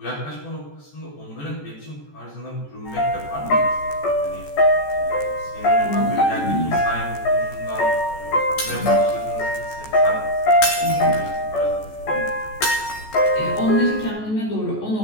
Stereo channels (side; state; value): right; late; 14 ms